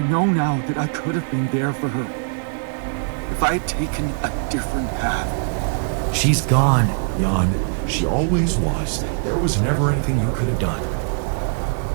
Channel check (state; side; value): silent; left; digital silence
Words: now that I could have been there for her. If I had taken a different path. She's gone, Jan. She always was. There was never anything you could have done.